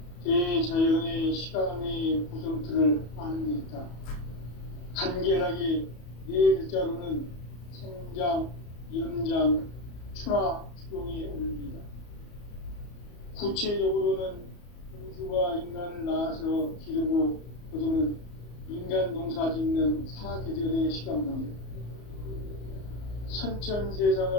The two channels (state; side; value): late; right; 34 ms